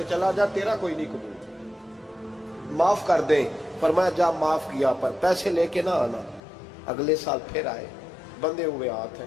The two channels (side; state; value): right; drops out; at 6.4 s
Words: چلا جا، تیرا کوئی نہیں قبول، معاف کر دیں۔ فرمایا جا معاف کیا، پر پیسے لے کے نہ آنا۔ اگلے سال پھر آئے، بندے ہوئے ہاتھ ہیں،